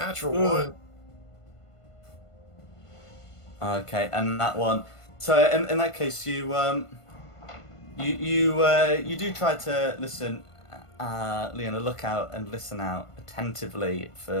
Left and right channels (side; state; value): right; late; 1.5 ms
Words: one. Okay, and that one. So in that case, you do try to listen, Leona, look out and listen out attentively